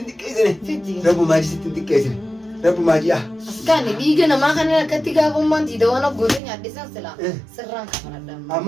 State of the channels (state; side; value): drops out; left; at 6.4 s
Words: xiqqeessine. Rabbumaa sittiin xiqqeessine. Rabbumaa ji'a. Askanni dhiiga namaa kana akkatti gaafummaan tiidawwan abgootee nyaadhisan silaa sirraan kafaladhaan.